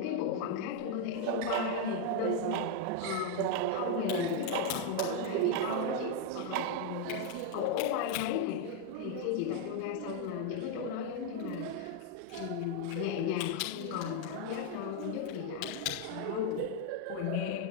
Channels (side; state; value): both; different; correlation 0.01